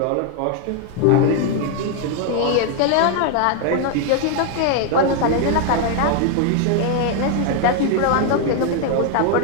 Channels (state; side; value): different; both; correlation 0.00